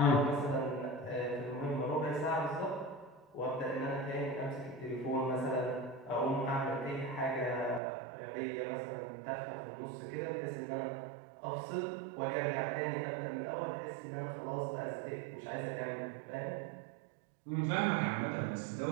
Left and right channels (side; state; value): left; drops out; at 7.8 s